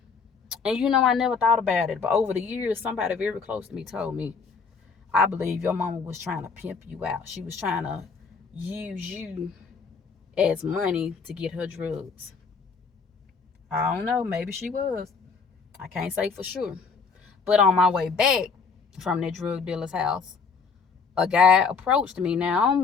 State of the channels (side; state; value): right; quieter; 5.2 dB